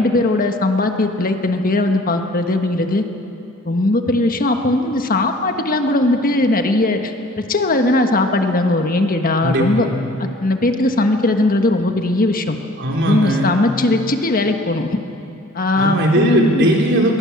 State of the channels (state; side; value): normal; both; correlation 0.51